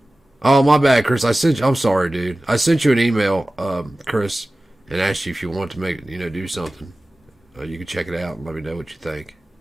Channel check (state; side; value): normal; both; correlation 0.97